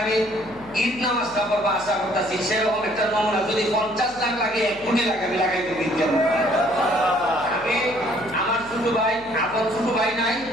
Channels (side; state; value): left; noise; hum, 22 dB below the sound